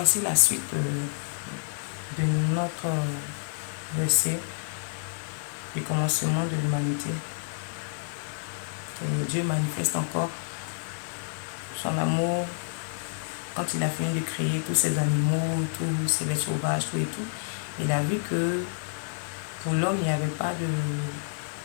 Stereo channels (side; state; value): right; silent; digital silence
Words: la suite de notre verset du commencement de l'humanité. Et Dieu manifeste encore son amour quand il a fini de créer tous ces animaux, tous ces bêtes sauvages, tout et tout. Il a vu que pour l'homme, il n'y avait pas